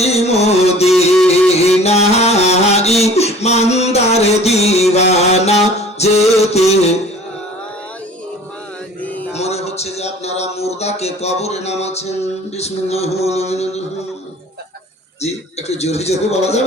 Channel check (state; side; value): normal; both; correlation 0.48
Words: মদিনা, ইমানদার দিওয়ানা যেতে। মনে হচ্ছে যে আপনারা মুর্দাকে কবরে নামাচ্ছেন। বিসমিল্লাহির রহমানির রহিম। জি একটু জোরে জোরে বলা